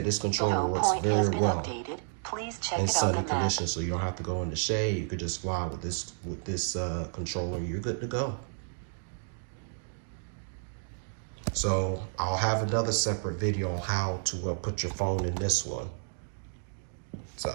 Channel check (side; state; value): left; silent; digital silence